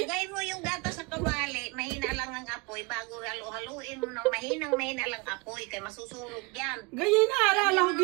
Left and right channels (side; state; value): left; quieter; 27.8 dB